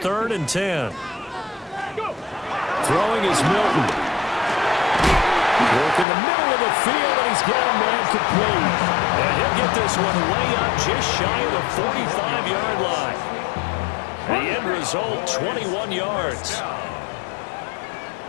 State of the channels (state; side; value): drops out; right; at 6.1 s